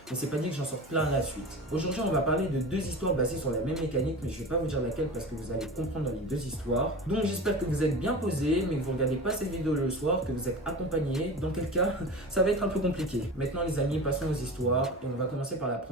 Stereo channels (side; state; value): both; normal; correlation 0.32